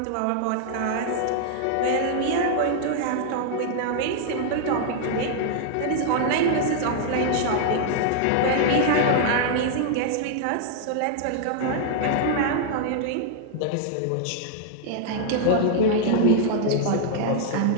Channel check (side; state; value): both; different; correlation -0.01